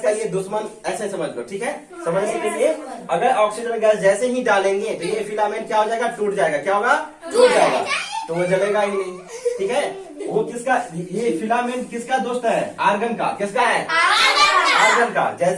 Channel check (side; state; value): both; identical; correlation 1.00